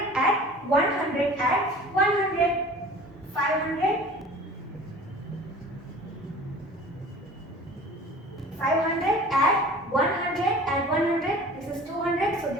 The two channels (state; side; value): normal; both; correlation 0.43